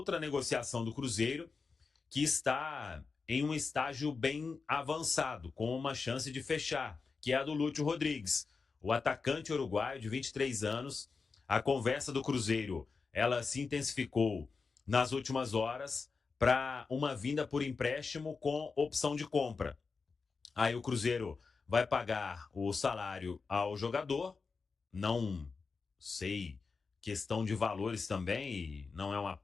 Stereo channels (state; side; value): quieter; right; 4.7 dB